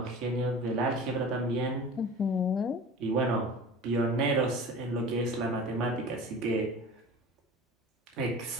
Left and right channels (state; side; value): normal; both; correlation 0.38